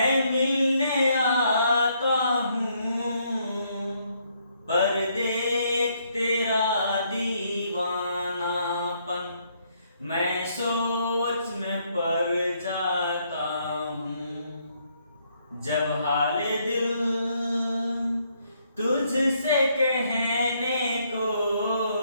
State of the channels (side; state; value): both; inverted; correlation -0.72